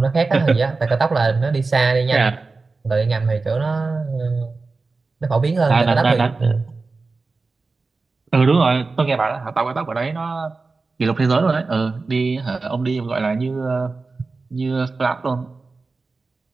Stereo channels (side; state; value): left; quieter; 3.9 dB